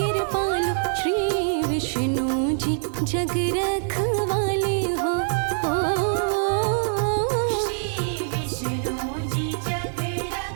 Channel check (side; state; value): left; silent; digital silence